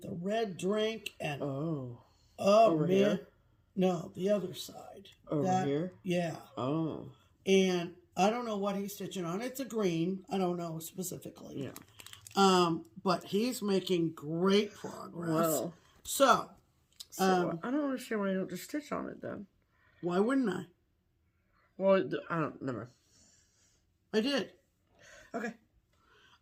the red drink and over here? No, the other side. Over here? Yeah. Oh. And I don't know what he's stitching on. It's a green. I don't know specifically. Yeah. But he's making great progress. Well. So I don't understand why you don't just stitch on it then. Why wouldn't I? Well, I don't. Never. I did. Okay.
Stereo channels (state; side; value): identical; both; correlation 1.00